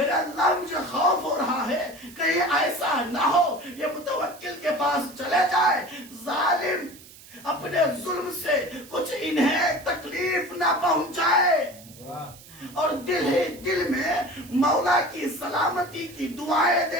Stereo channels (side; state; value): right; noise; hiss, 20 dB below the sound